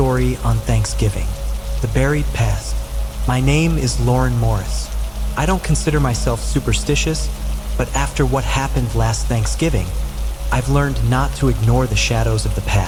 on Thanksgiving. The Buried Past. My name is Lauren Morris. I don't consider myself superstitious, but after what happened last Thanksgiving, I've learned not to ignore the shadows of the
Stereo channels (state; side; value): identical; both; correlation 1.00